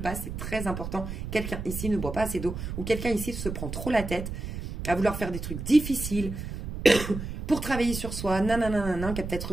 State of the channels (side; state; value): right; noise; rumble, 6 dB below the sound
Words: c'est très important. Quelqu'un ici ne boit pas assez d'eau, ou quelqu'un ici se prend trop la tête à vouloir faire des trucs difficiles, pour travailler sur soi, nanana, qui a peut-être